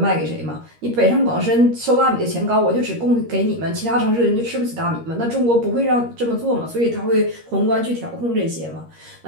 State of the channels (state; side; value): late; left; 13 ms